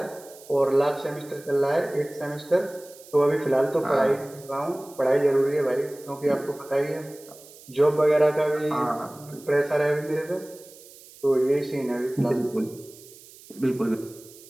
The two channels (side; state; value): right; noise; hiss, 21 dB below the sound